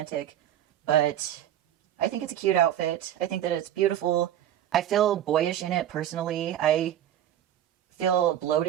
but I think it's a cute outfit. I think that it's beautiful. I feel boyish in it personally. I feel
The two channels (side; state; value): left; quieter; 11.3 dB